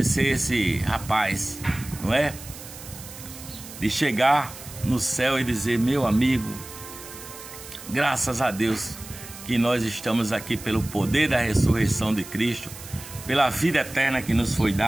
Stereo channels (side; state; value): right; noise; hiss, 15 dB below the sound